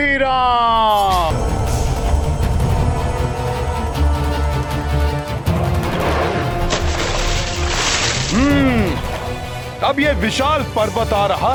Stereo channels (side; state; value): both; identical; correlation 1.00